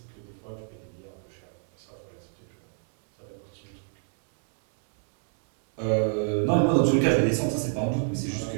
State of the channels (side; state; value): left; silent; 60 dB below the other